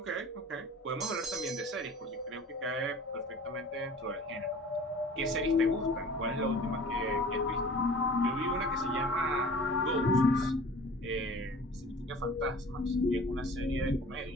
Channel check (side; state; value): both; normal; correlation 0.45